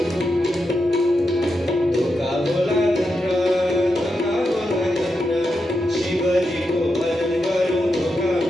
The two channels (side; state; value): both; normal; correlation 0.86